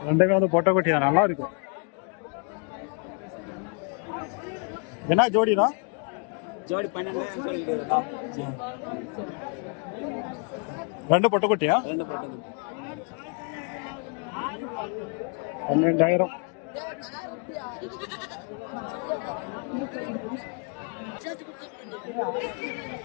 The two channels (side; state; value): right; quieter; 39.4 dB